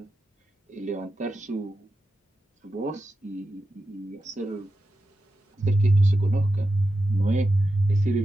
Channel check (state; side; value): normal; both; correlation 0.90